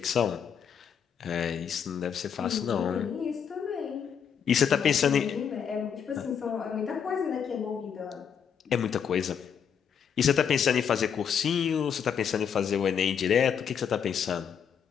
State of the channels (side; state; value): right; quieter; 7.7 dB